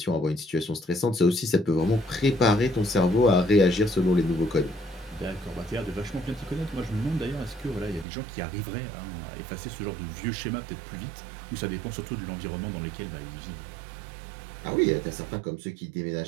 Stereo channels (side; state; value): left; drops out; at 8.1 s